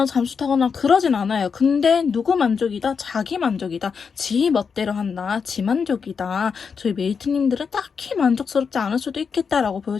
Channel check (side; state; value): right; quieter; 5.9 dB